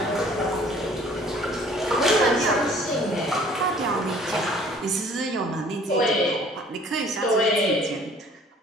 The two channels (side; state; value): both; normal; correlation 0.54